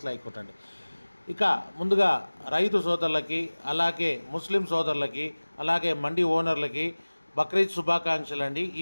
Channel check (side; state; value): both; inverted; correlation -1.00